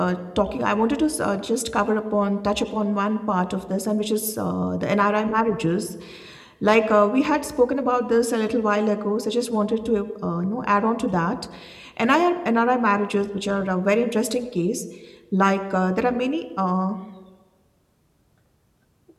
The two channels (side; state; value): both; identical; correlation 1.00